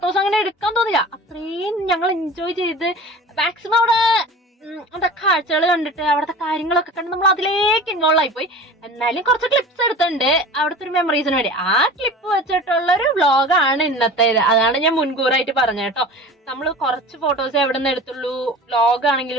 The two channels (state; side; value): normal; both; correlation 0.38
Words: അങ്ങനെ എടുക്കാൻ തോന്നില്ല, അത്രയും ഞങ്ങൾ എൻജോയ് ചെയ്ത് മാക്സിമം അവിടെ കാഴ്ചകൾ കണ്ടിട്ട് അവിടുത്തെ കാര്യങ്ങളൊക്കെ കണ്ട് നമ്മൾ അതിലേക്ക് ഇൻവോൾവ് ആയിപ്പോയി. എന്നാലും കുറച്ച് ക്ലിപ്സ് എടുത്തിട്ടുണ്ട് അവിടുത്തെ ഒരു മെമ്മറീസിന് വേണ്ടി. ആ ക്ലിപ്പ് വെച്ചിട്ടുള്ള ഒരു വ്ളോഗാണ് ഇന്നത്തേത്. അതാണ് ഞാൻ മുൻകൂറായിട്ട് പറഞ്ഞത് കേട്ടോ. നമ്മൾ കുറച്ച് ഫോട്ടോസ് എവിടെ നിന്ന് എടുത്തുള്ളൂ, വ്ളോഗ്